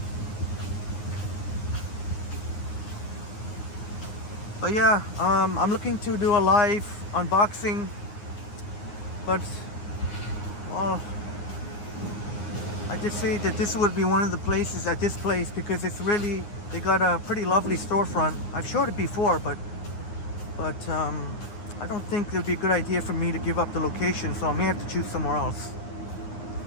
But yeah, I'm looking to do a live unboxing. But, well, I just say that this would be one of the places at this place because it's really, they got a pretty lovely storefront. I've showed it before, but I don't think it would be a good idea for me to give up the location, so I may have to choose somewhere else.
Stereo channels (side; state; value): right; late; 9.6 ms